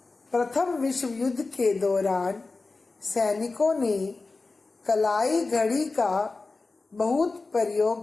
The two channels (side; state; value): right; quieter; 3.7 dB